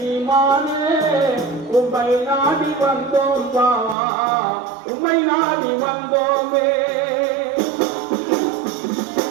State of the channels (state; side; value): drops out; left; at 4.0 s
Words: உம்மை நாடி வந்தோம் பா உம்மை நாடி வந்தோமே